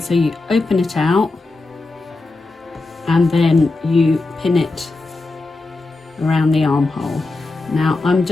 so you open it out and then you pin it around the armhole. Now I'm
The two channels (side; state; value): right; quieter; 3.3 dB